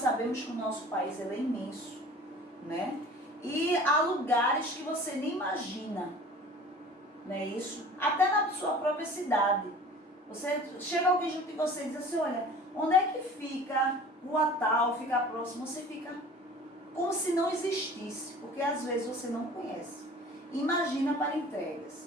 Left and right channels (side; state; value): both; normal; correlation 0.44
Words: que o nosso país é imenso, né? E há lugares que você nem imagina, não é isso? Até na sua própria cidade. Você chega alguém junto de você e diz assim, olha, onde é que fica Rua Tal, fica próximo? Você fica como se não existisse, porque às vezes você não conhece. Imagina para